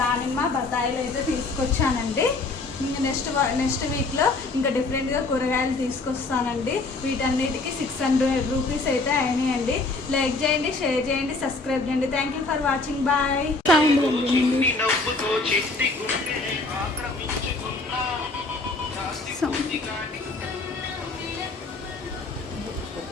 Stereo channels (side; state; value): right; quieter; 3.5 dB